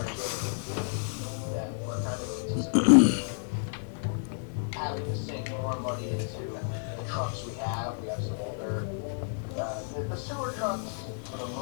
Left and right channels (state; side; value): silent; right; digital silence